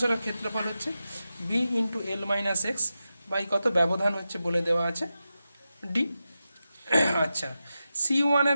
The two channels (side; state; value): both; inverted; correlation -0.91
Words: ক্ষেত্রফল হচ্ছে B into L minus X by কত, ব্যবধান হচ্ছে বলে দেওয়া আছে ডি। আচ্ছা, C1